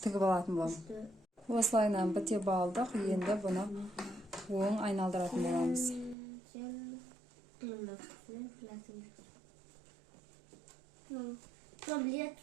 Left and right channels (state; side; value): drops out; left; at 6.2 s